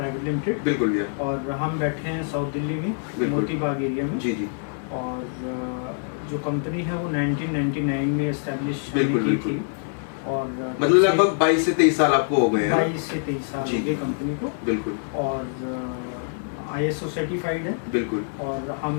limited. बिल्कुल भैया। और हम बैठे हैं साउथ दिल्ली में, मोती बाग एरिया में। जी जी। और जो कंपनी है वो 1999 में एस्टेब्लिश की थी और मतलब लगभग 22 से 23 साल आपको हो गए हैं। 22 से 23 साल हो गए कंपनी को। बिल्कुल। और ISO सर्टिफाइड है। बिल्कुल। और हम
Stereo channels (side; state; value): right; silent; 62 dB below the other